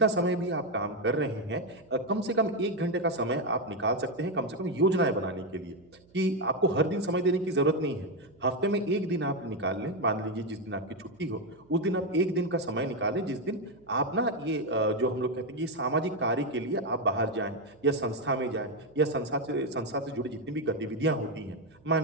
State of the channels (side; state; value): right; noise; hum, 29 dB below the sound